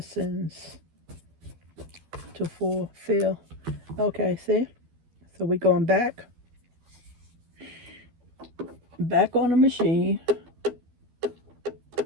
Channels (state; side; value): late; left; 12 ms